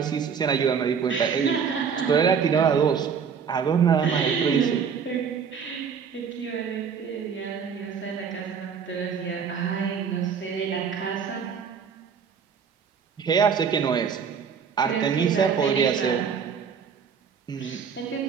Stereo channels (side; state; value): left; quieter; 6.6 dB